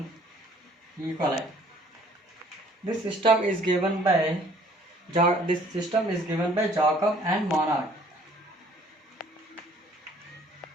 E. coli. This system is given by Jacob and Monod.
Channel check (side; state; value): both; normal; correlation 0.57